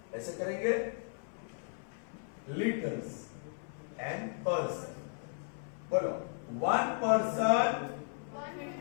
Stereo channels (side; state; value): right; silent; 54 dB below the other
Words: ऐसे करेंगे, लीटर्स एंड पर्सन। बोलो, one person,